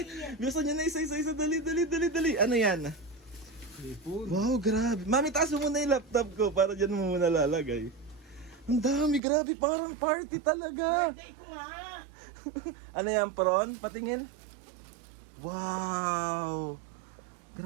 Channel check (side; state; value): left; drops out; at 9.2 s